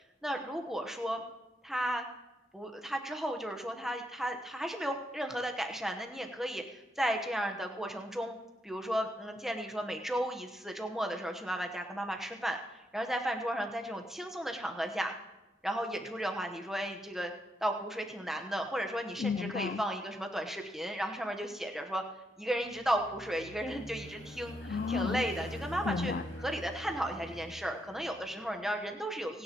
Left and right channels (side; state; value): both; normal; correlation 0.78